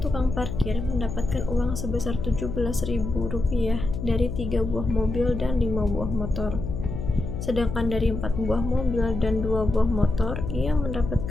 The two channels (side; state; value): left; noise; hum, 5 dB below the sound